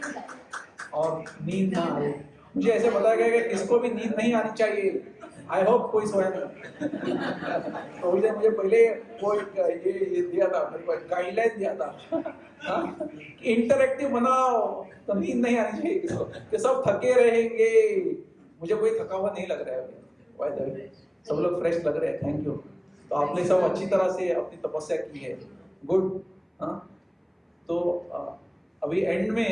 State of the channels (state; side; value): identical; both; correlation 1.00